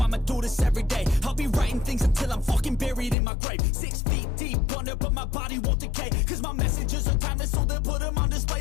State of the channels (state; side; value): drops out; right; at 3.2 s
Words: do this every day. I'll be writing things until I'm fucking buried in my grave. 6 feet deep under, but my body won't decay. Cause my messages are timeless, so they'll put them on